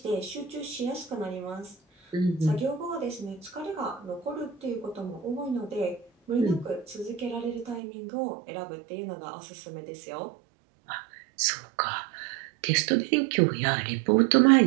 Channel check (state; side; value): drops out; left; at 7.8 s